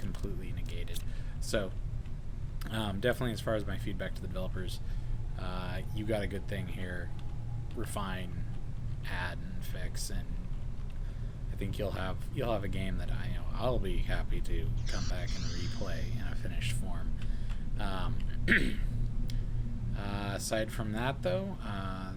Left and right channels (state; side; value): identical; both; correlation 1.00